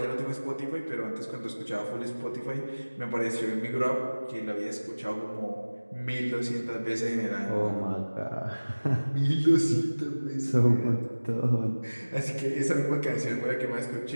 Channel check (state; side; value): inverted; both; correlation -1.00